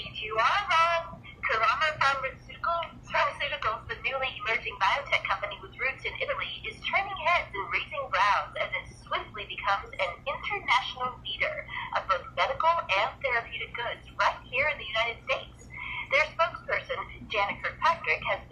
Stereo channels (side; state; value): both; identical; correlation 1.00